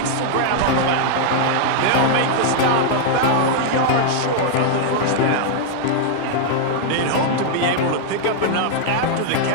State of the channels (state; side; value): different; both; correlation -0.01